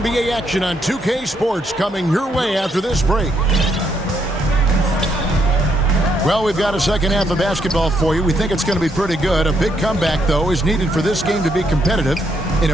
action on 2K Sports coming your way after this break. Well, we've got a second half of basketball for you. We think it's going to be pretty good. A big comeback, though, is needed for this game to be competitive, and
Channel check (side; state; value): both; normal; correlation 0.75